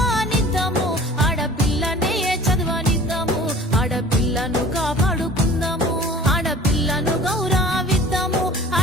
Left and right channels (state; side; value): normal; both; correlation 0.46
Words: ఆడపిల్లనే చదవనిద్దాము ఆడపిల్లను కాపాడుకుందాము ఆడపిల్లను గౌరవిద్దాము